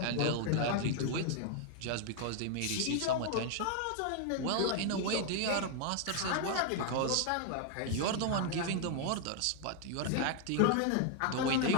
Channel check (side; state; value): both; different; correlation 0.00